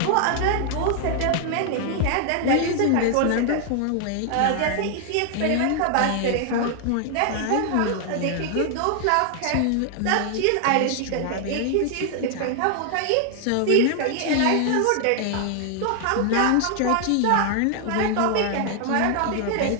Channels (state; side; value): different; both; correlation 0.00